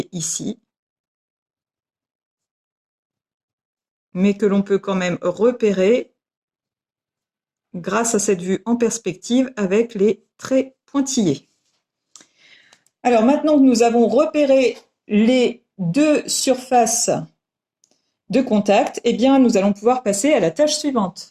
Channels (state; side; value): identical; both; correlation 1.00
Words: ici, mais que l'on peut quand même repérer grâce à cette vue en perspective avec les traits pointillés. Alors maintenant que nous avons repéré les 2 surfaces de contact, eh bien, nous allons pouvoir passer à la tâche